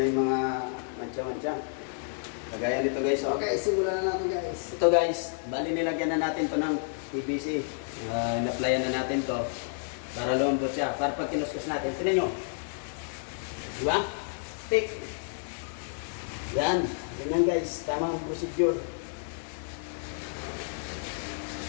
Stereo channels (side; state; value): right; silent; digital silence